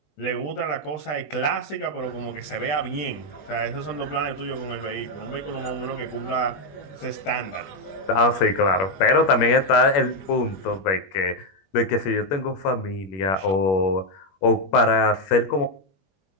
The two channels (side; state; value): right; late; 21 ms